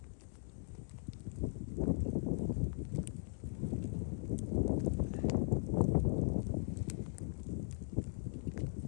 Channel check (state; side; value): silent; right; digital silence